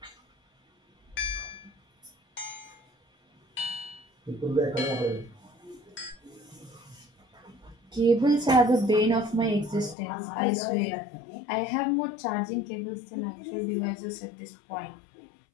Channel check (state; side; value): drops out; right; at 10.0 s